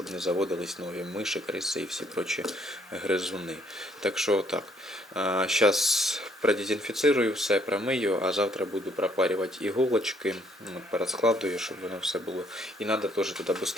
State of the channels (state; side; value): normal; both; correlation 0.66